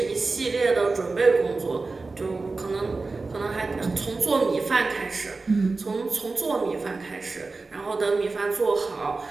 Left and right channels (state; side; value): quieter; left; 3.8 dB